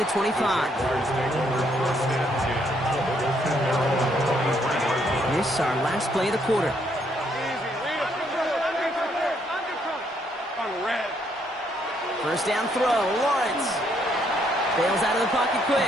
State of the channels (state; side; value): normal; both; correlation 0.71